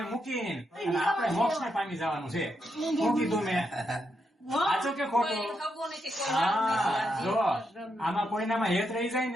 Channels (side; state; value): both; normal; correlation 0.82